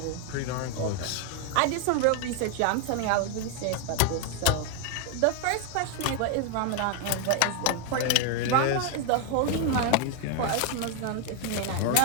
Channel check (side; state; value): both; different; correlation 0.01